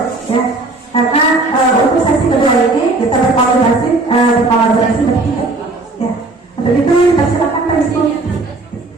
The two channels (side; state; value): left; quieter; 3.2 dB